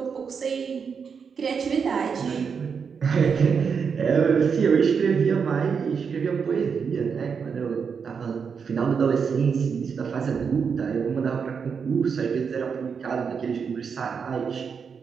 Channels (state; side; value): quieter; left; 6.2 dB